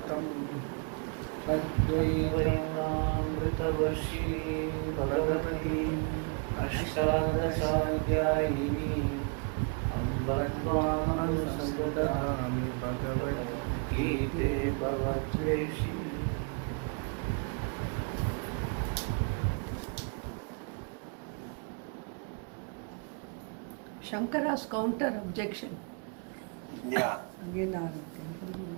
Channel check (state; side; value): quieter; left; 36.3 dB